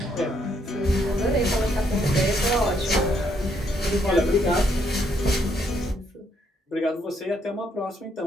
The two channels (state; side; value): normal; both; correlation 0.72